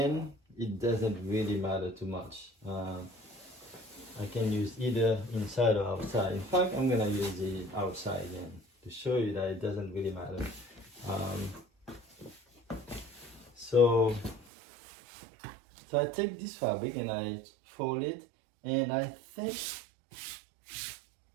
it doesn't really matter too much. I can use either inside or outside. In fact, I'm gonna use the outside again to show you that it doesn't really matter. So I take this fabric and I fold it, and I think,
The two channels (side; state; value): left; drops out; at 14.5 s